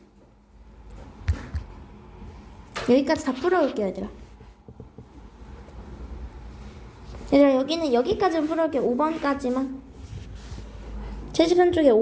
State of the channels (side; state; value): both; identical; correlation 1.00